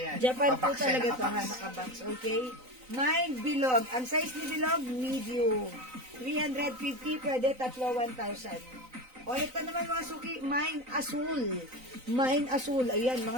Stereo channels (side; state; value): left; late; 3.9 ms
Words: yan. Japan po Nakabox yan, talaga to, ha, nakabox. nakabox. Okay? Mine bilog. Ang size ni bilog, medium. 350, pwede tatlo 1,000. O, ito naman mga suki, mine asul. Mine asul. Ayan,